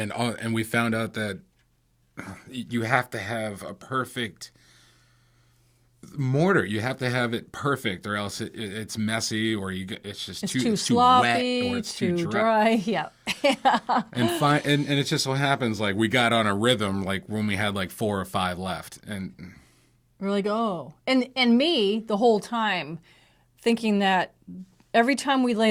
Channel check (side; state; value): both; identical; correlation 1.00